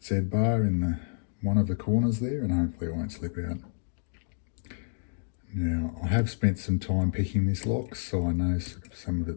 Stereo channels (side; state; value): right; silent; digital silence